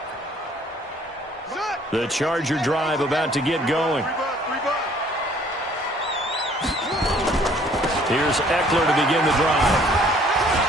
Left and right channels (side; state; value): both; normal; correlation 0.58